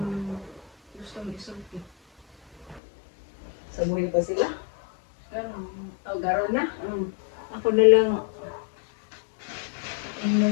gustong isulti. Sa buhay pa sila? Garon na? Mm. Ako na lang,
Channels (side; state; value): right; drops out; at 2.8 s